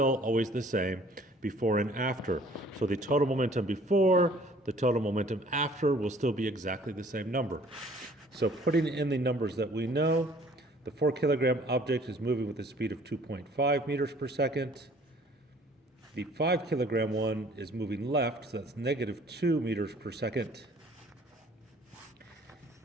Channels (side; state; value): both; normal; correlation 0.55